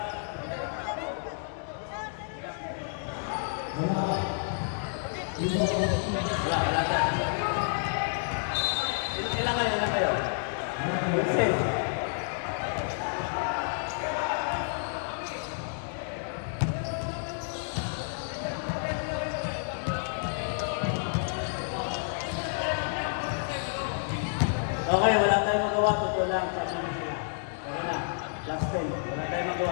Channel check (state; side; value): silent; right; digital silence